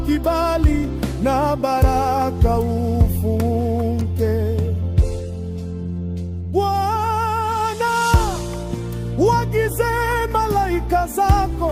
kibali na baraka ufunge. Bwana, waagize malaika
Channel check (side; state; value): both; identical; correlation 1.00